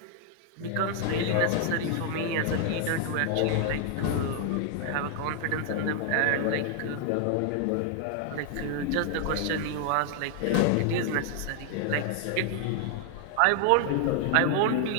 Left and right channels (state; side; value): different; both; correlation 0.00